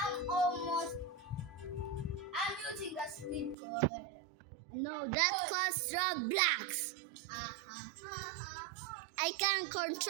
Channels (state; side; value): drops out; left; at 3.6 s